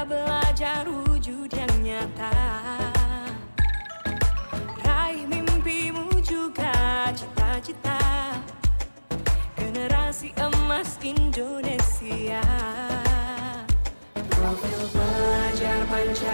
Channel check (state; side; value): inverted; both; correlation -1.00